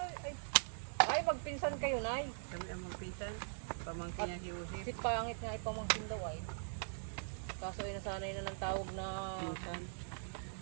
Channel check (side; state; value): left; silent; digital silence